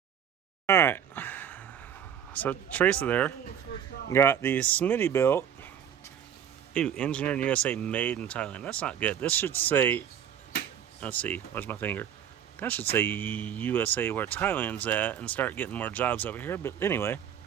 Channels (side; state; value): left; quieter; 9.1 dB